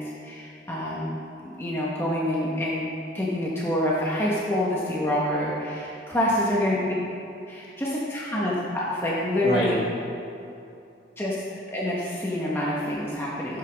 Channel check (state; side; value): normal; both; correlation 0.49